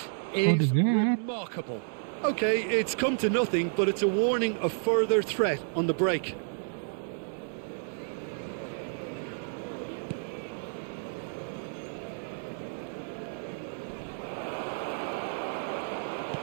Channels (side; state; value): left; silent; digital silence